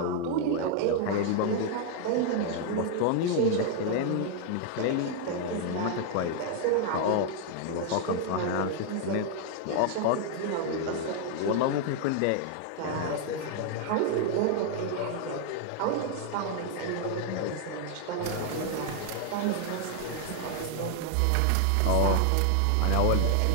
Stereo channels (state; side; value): different; both; correlation 0.00